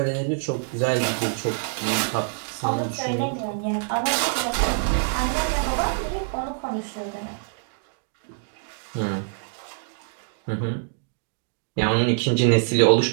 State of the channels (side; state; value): left; silent; digital silence